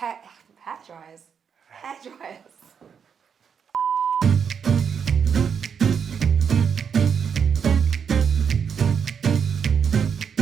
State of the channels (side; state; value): left; quieter; 7.0 dB